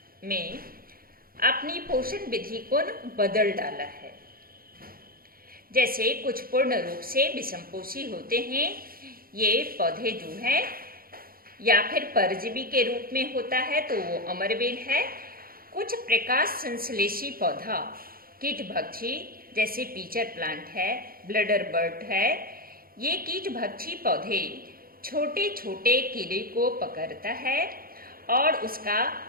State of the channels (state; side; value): late; left; 0.42 ms